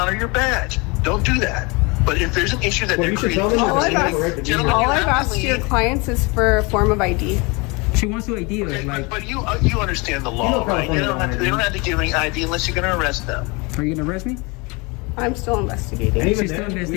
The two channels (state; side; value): quieter; right; 27.7 dB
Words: your badge. Don't do that. But if there's an issue that Well, they're you should creating, tell them All that I've they have a right to be Gentlemen, here. All you I've have to asked your leave. clients is for a form of ID. She wants to ID us. Okay, Like, but you understand the law, You know right? They California don't have to give any ID unless you're going to arrest them. are you gonna arrest me? I'm still investigating. And even She's still then, we